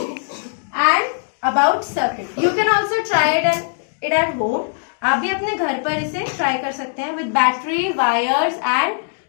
and about circuit. You can also try it at home. आप भी अपने घर पर इसे ट्राई कर सकते हैं with battery, wires and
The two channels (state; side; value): silent; right; digital silence